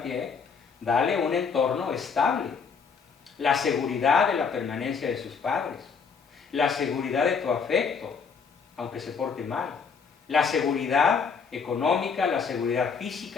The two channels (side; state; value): right; quieter; 5.7 dB